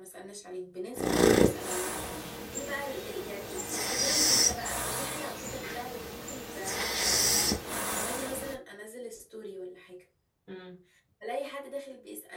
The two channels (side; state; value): both; identical; correlation 1.00